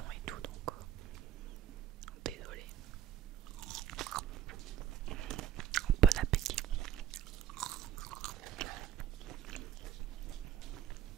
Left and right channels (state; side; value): quieter; left; 9.8 dB